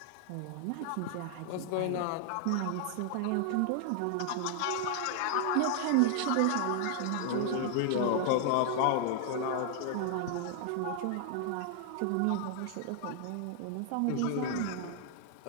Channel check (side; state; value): both; different; correlation 0.00